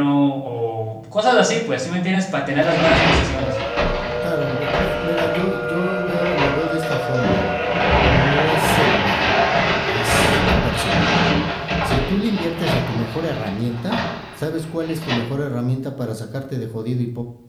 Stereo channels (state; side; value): identical; both; correlation 1.00